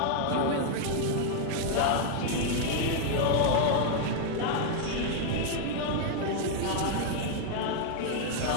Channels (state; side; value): different; both; correlation 0.00